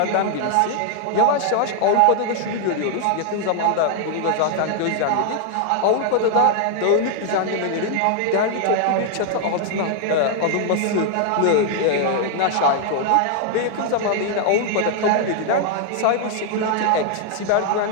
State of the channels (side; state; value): both; different; correlation 0.00